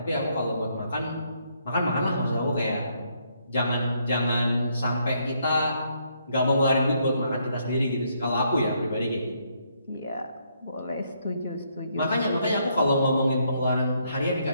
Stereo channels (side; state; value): both; inverted; correlation -0.73